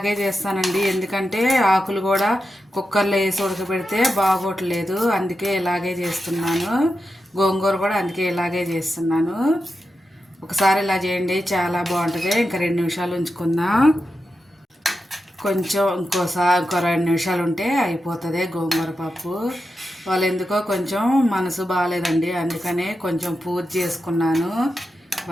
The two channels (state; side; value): normal; both; correlation 0.89